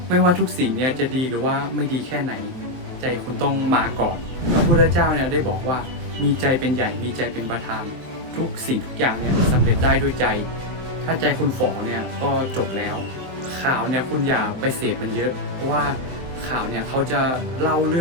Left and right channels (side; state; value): left; late; 23 ms